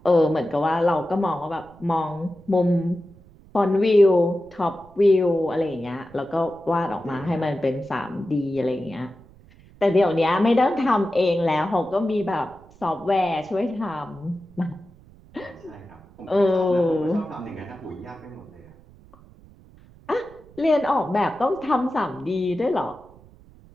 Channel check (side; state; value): right; noise; rumble, 24 dB below the sound